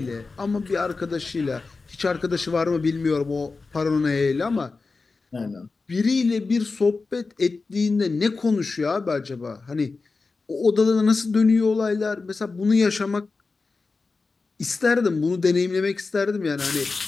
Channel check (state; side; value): quieter; right; 4.1 dB